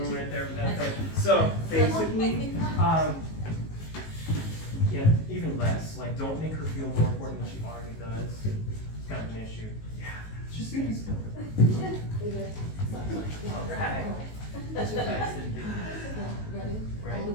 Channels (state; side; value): late; right; 19 ms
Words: right there for that thing. So, basically, yeah, even less. Like, don't make her feel more important than she already does. It's kind of an issue. Yeah, just be still. Alright. That's your face. Ready? Right. All the